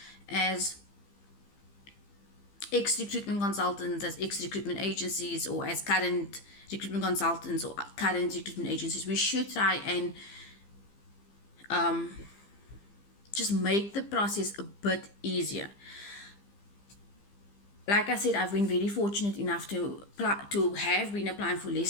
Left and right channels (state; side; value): late; right; 15 ms